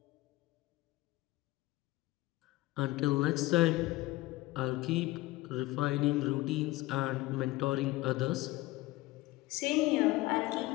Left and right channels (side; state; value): right; quieter; 19.1 dB